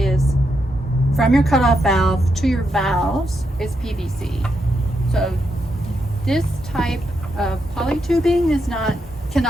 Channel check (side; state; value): both; normal; correlation 0.82